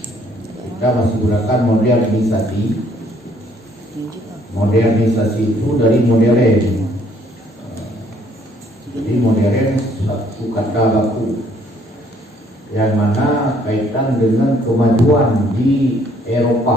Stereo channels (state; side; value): normal; both; correlation 0.64